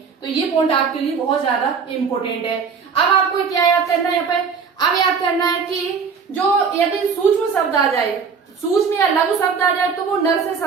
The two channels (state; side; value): quieter; left; 5.8 dB